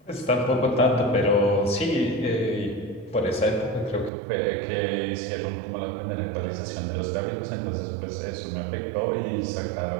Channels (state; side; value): drops out; left; at 4.1 s